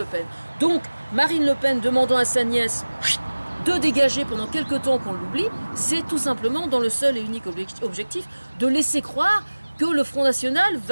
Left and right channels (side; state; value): both; inverted; correlation -1.00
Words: Pen. Donc Marine Le Pen demandant à sa nièce de dégager pendant quelque temps qu'on l'oublie, c'est tout simplement dans le seul et unique objectif de laisser croire que le Front National